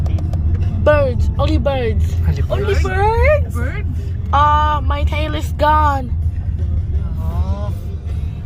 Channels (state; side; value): identical; both; correlation 1.00